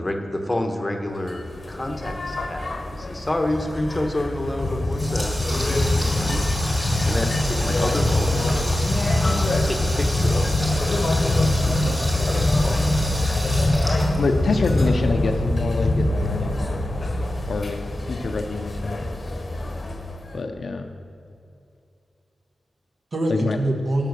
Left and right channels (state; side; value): normal; both; correlation 0.93